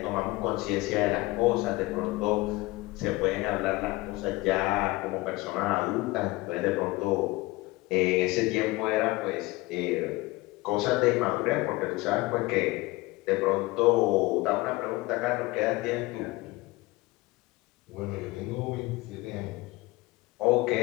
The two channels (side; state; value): right; quieter; 21.1 dB